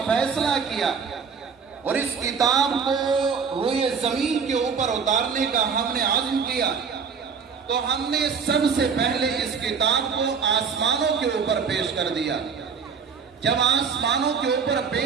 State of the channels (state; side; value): quieter; left; 5.9 dB